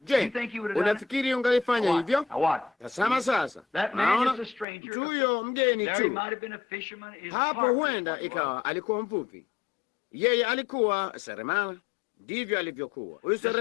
Je, unafikiri ungalifanya hivyo? Tazama sasa, naona mtu huyo mgeni tu hapo, huenda ikawa alikuwa mvuvi, yeye alikuwa seremala. Ndivyo alivyokuwa huyu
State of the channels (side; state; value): right; drops out; at 4.7 s